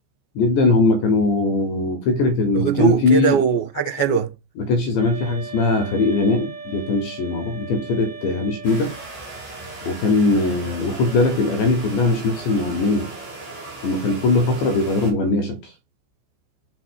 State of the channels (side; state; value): right; late; 14 ms